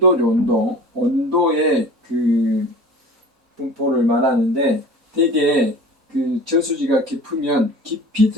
분포를 말하는데, 대개 저수지가 깊으면 깊이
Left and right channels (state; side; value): normal; both; correlation 0.40